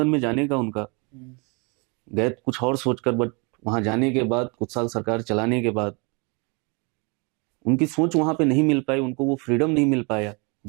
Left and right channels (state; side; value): quieter; left; 31.4 dB